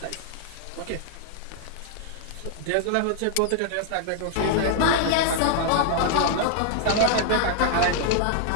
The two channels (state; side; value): different; both; correlation 0.00